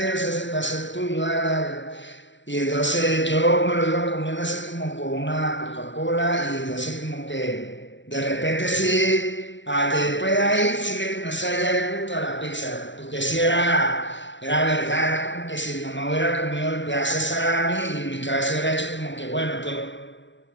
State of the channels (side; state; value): right; late; 0.54 ms